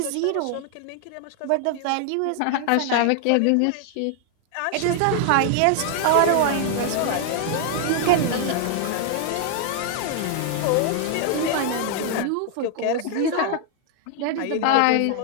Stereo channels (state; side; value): different; both; correlation 0.00